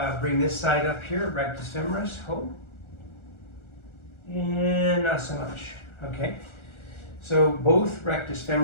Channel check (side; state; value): right; late; 1.4 ms